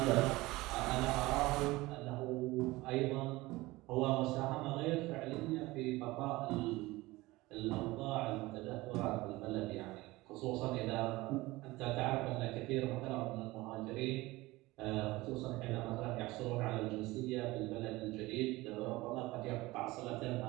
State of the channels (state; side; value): quieter; left; 20.2 dB